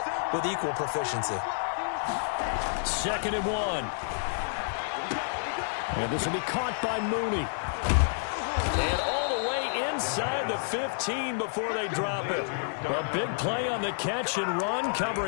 with equal proficiency. 2nd and 1. And this will be caught by Mooney. And all the way inside the 15 before they drop it. A big play on the catch and run,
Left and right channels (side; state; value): right; silent; digital silence